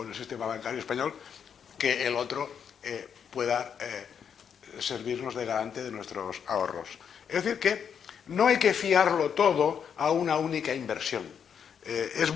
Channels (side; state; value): right; quieter; 7.6 dB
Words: el sistema bancario español, que el otro pueda servirnos de garante de nuestros ahorros. Es decir, que no hay que fiarlo todo a una única inversión. Es